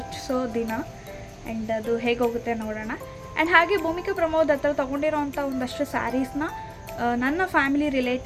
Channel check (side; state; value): both; identical; correlation 1.00